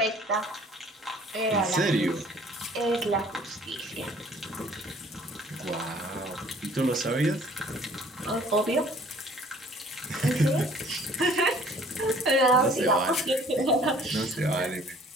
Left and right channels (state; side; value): normal; both; correlation 0.55